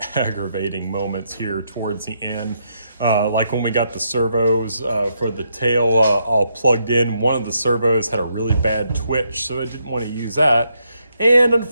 aggravating moments here towards the end. Like when we got the servos for the tail all plugged in, one of the servos had a really bad twitch, so I didn't want to use that. And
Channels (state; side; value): inverted; both; correlation -0.78